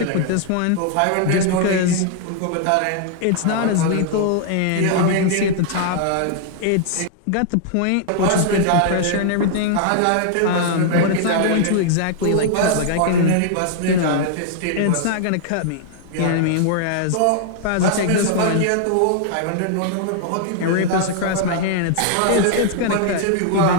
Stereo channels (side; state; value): both; different; correlation -0.01